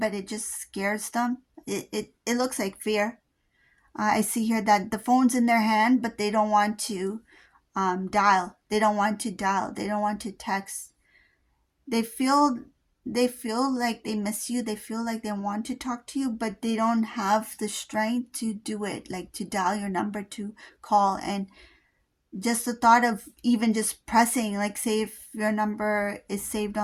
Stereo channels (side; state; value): both; identical; correlation 1.00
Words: it just scares them. It looks like fear. I see here that the phone's in their hand, but they don't want to dial. They don't want to dial. They don't want to text. They feel they feel like they miss you. They feel like they want to talk to you, but they don't have the strength to do it, like to dial your number, to call. And just the thought of even just pressing, like say if your number is saved